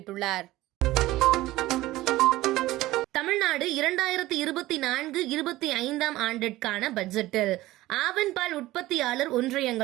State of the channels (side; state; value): left; quieter; 17.1 dB